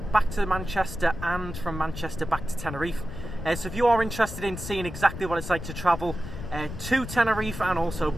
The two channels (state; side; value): noise; left; rumble, 9 dB below the sound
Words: back to Manchester and from Manchester back to Tenerife. So if you are interested in seeing exactly what it's like to travel to Tenerife and also